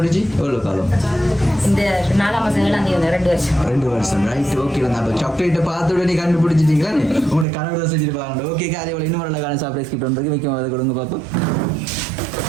எவ்வளவு காலம்? இந்த 4ஆம் மாசம் 2 வருஷம். Right, okay. அப்ப சாக்லேட்டை பார்த்த உடனே கண்டுபிடிச்சிட்டீங்களா? உங்களுக்கு கனவு செஞ்சிருப்பாங்க. ஓகே, அதே போல இன்னும் வரலாறு சர்ப்ரைஸ் கிஃப்ட் வந்து வைக்கும், அதை கொடுங்க பார்ப்போம்.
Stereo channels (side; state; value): left; drops out; at 7.5 s